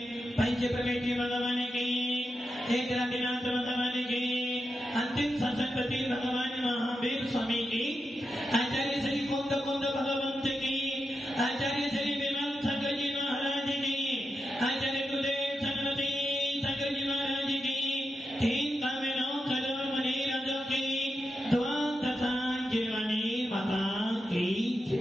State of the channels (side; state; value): both; normal; correlation 0.88